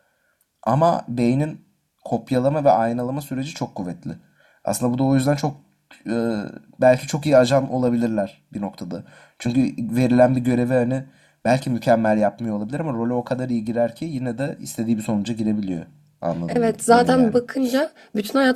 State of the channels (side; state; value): both; identical; correlation 1.00